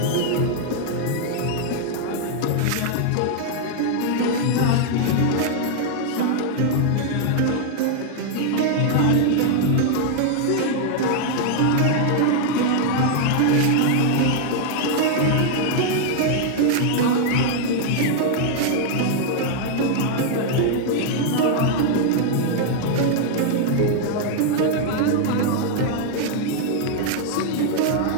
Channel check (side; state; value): both; different; correlation -0.01